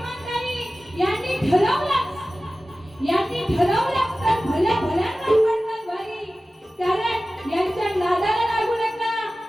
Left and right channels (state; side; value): normal; both; correlation 0.96